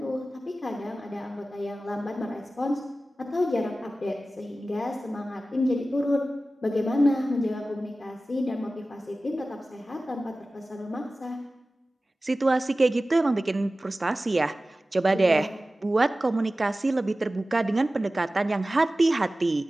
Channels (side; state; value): both; normal; correlation 0.96